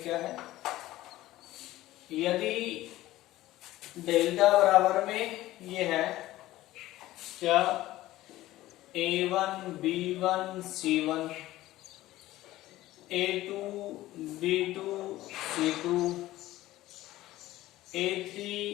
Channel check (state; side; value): quieter; right; 16.1 dB